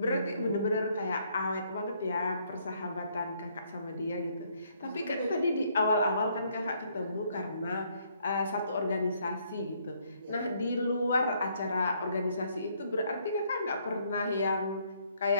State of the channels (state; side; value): inverted; both; correlation -0.69